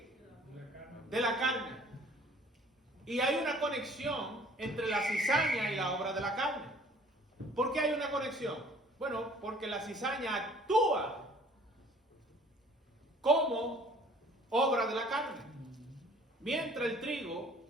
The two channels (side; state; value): both; normal; correlation 0.54